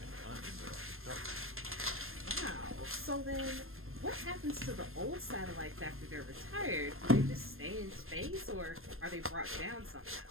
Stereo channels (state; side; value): late; left; 0.61 ms